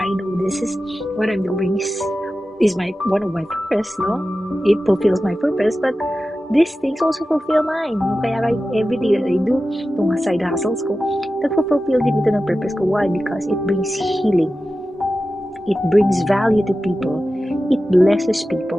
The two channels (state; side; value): normal; both; correlation 0.94